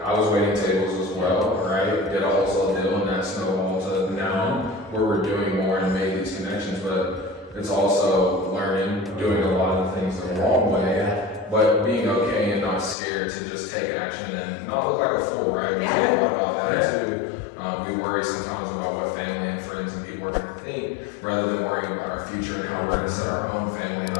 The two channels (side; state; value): right; drops out; at 13.0 s